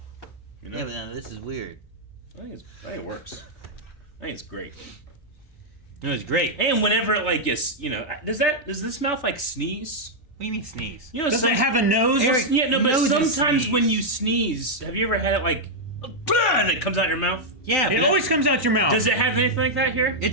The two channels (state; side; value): normal; both; correlation -0.04